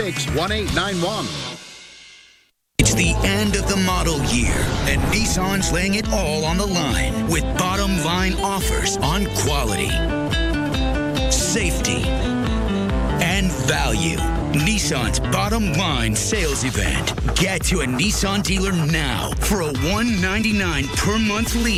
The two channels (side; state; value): both; identical; correlation 1.00